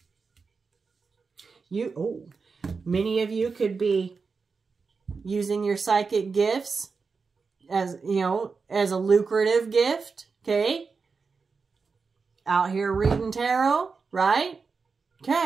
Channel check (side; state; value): left; quieter; 4.9 dB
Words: Many of you could be using your psychic gifts as, as a lucrative gift, okay? Out here reading tarot, right?